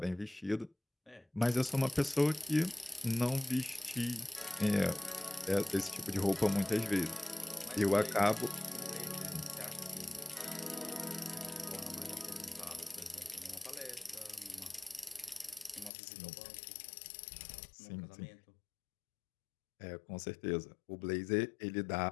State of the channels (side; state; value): right; drops out; at 15.9 s